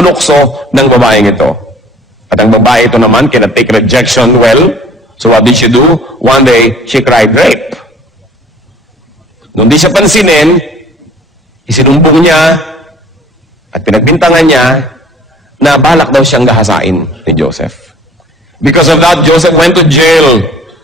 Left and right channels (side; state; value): both; normal; correlation 0.51